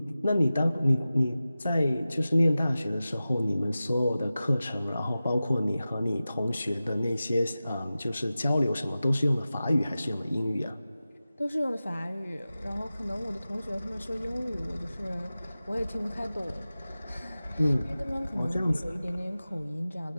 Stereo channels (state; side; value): inverted; both; correlation -0.95